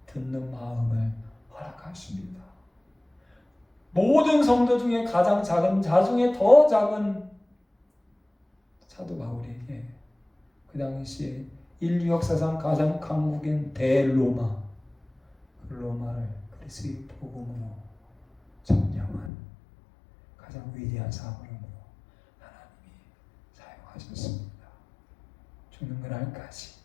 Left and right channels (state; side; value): drops out; right; at 19.3 s